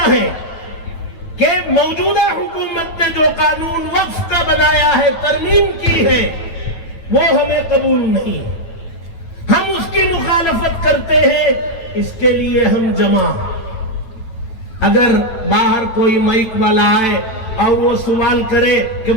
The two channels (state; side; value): late; right; 9.1 ms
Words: ہے کہ موجودہ حکومت نے جو قانون وقف کا بنایا ہے، ترمیم کی ہے، وہ ہمیں قبول نہیں، ہم اس کی مخالفت کرتے ہیں، اس کے لیے ہم جمع۔ اگر باہر کوئی مائک والا آئے اور وہ سوال کرے کہ